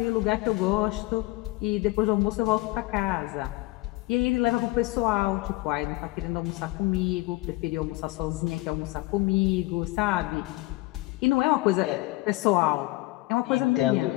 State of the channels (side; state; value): right; quieter; 20.5 dB